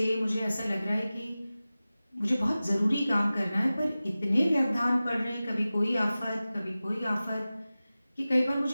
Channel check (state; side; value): inverted; both; correlation -0.96